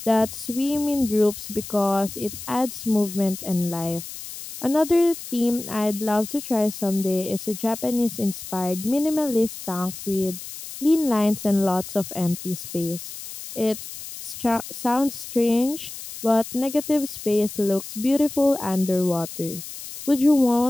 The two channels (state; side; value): noise; left; hiss, 11 dB below the sound